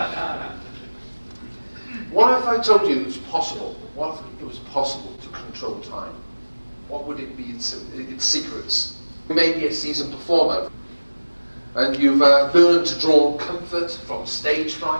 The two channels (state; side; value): inverted; both; correlation -1.00